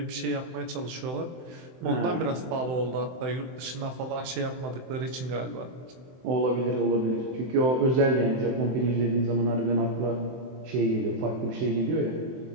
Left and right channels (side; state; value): left; late; 23 ms